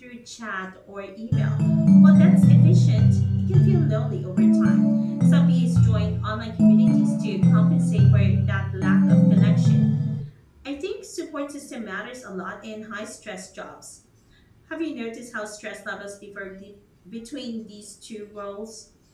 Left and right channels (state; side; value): identical; both; correlation 1.00